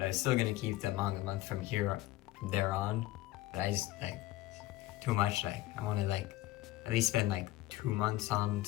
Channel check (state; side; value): quieter; right; 16.6 dB